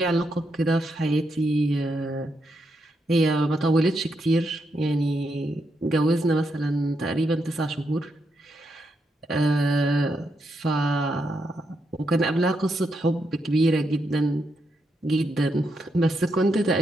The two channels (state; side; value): normal; both; correlation 0.82